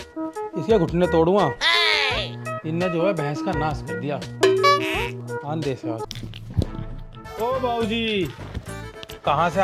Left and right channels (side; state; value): both; identical; correlation 1.00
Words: इसके घुटने तोड़ूंगा। इनने जो है भैंस का नाश कर दिया। आन दे से आज। ओ बाबूजी, कहाँ से